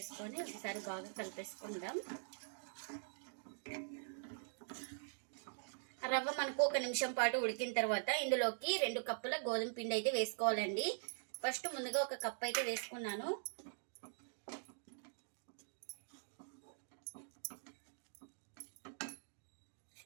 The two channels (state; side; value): silent; left; digital silence